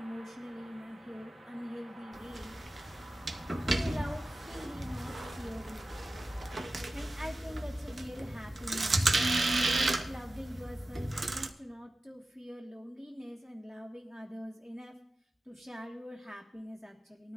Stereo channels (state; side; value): normal; both; correlation 0.95